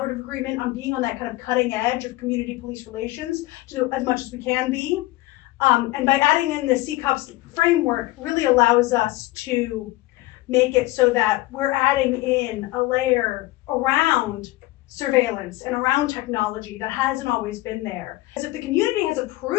agreement, on being on that kind of cutting edge of community police relations to do as much as we can be. And by adding in the CCOPS framework really allows us to make it so that we're adding in a layer around surveillance and around technology that hasn't always been there. Because if the community has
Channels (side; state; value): right; quieter; 18.8 dB